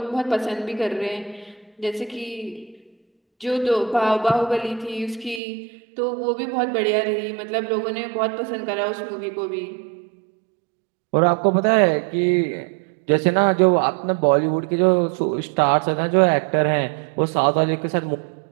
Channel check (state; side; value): drops out; left; at 5.4 s